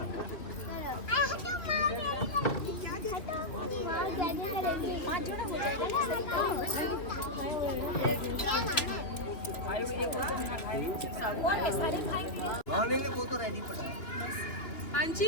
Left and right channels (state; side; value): late; right; 2.9 ms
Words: वो तो रेडी पड़ा। हाँ